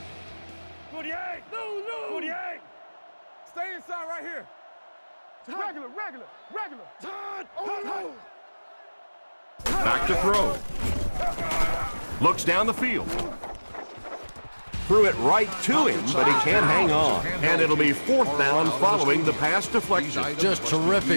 48. 48. Stay inside right here. Regular. Back to throw. Looks down the field. Threw it right to him, but he can't hang on. And it'll be 4th down following the pass deflection. Just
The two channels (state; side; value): inverted; both; correlation -1.00